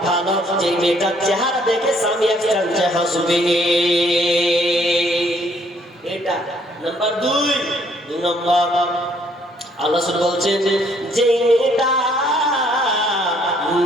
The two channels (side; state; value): both; normal; correlation 0.65